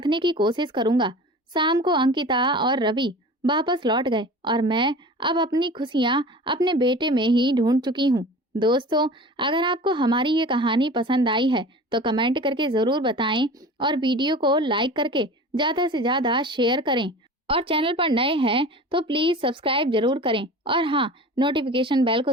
की कोशिश करूंगा। शाम को अंकिता और रवि वापस लौट गए और मैं अब अपनी खुशियां अपने बेटे में ही ढूंढ चुकी हूँ। दोस्तों, अगर आपको हमारी ये कहानी पसंद आई है तो कमेंट करके जरूर बताएं और वीडियो को लाइक करके ज्यादा से ज्यादा शेयर करें। और चैनल पर नए हैं तो प्लीज सब्सक्राइब जरूर करें और हाँ, नोटिफिकेशन बेल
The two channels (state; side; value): normal; both; correlation 0.38